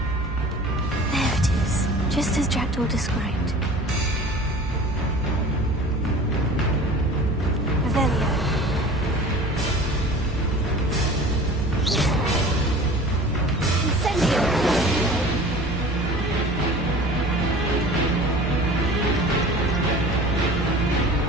There it is, just as Jackdaw described. Revelio. Incendio.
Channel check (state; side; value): normal; both; correlation 0.41